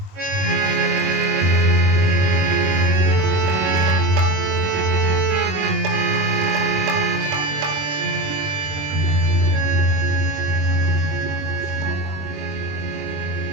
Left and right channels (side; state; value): left; late; 21 ms